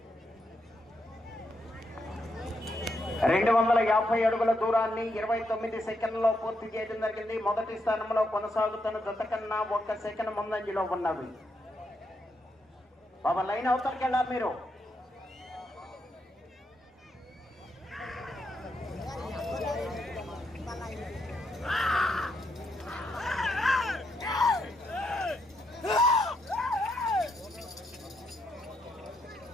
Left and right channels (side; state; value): both; normal; correlation 0.80